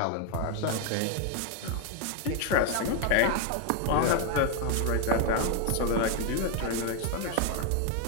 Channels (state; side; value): different; both; correlation 0.01